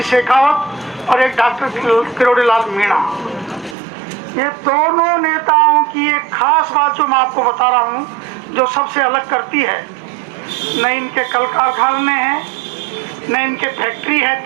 शेखावत और एक डॉक्टर किरोड़ीलाल मीणा। ये दोनों नेताओं की एक खास बात जो मैं आपको बता रहा हूं, जो सबसे अलग करती है, न इनके कल कारखाने हैं, न इनके फैक्ट्री है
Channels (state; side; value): drops out; left; at 3.8 s